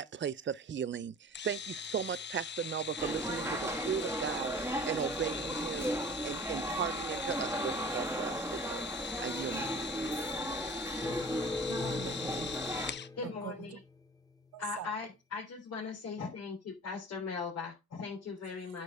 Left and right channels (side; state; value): both; normal; correlation 0.43